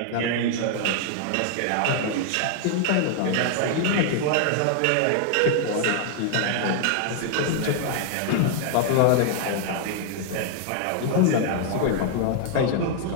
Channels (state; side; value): different; both; correlation 0.00